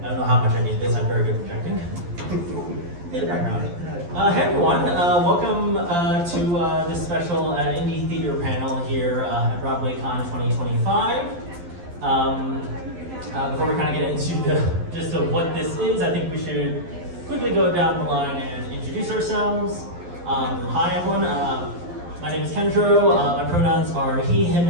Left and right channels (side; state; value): left; late; 11 ms